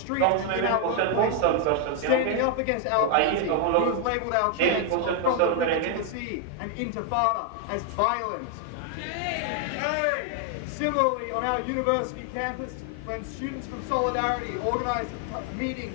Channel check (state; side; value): different; both; correlation 0.00